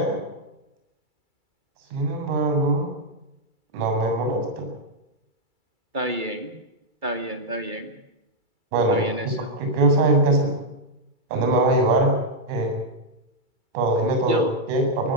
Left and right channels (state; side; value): late; left; 2.3 ms